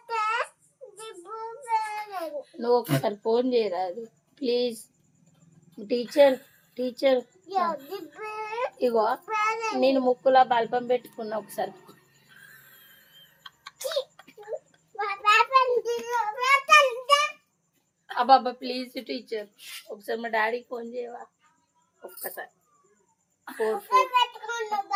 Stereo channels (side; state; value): both; identical; correlation 1.00